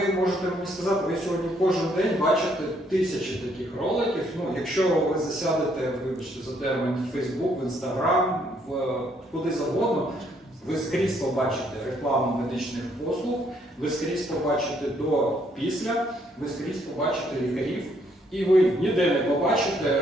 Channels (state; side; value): normal; both; correlation 0.69